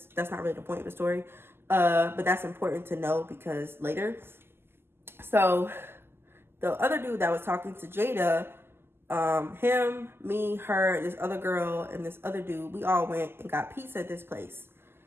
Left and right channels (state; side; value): late; left; 0.11 ms